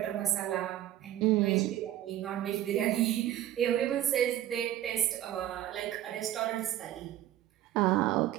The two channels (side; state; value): left; quieter; 12.8 dB